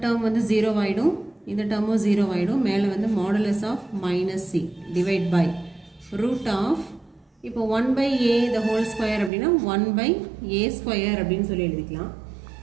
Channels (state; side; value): drops out; left; at 9.3 s